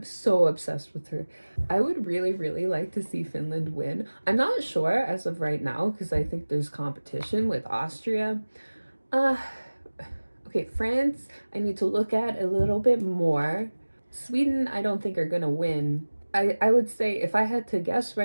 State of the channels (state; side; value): inverted; both; correlation -1.00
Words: so obsessed with her. I would really like to see Finland win. I'm not sure as of right now because I think there's competition with Austria. Okay, France, I need to look at a little bit more. Sweden, I don't think are gonna win. I would say if I had to guess